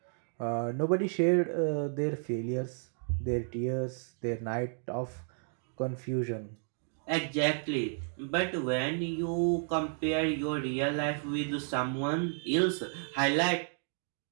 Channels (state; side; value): silent; left; 56 dB below the other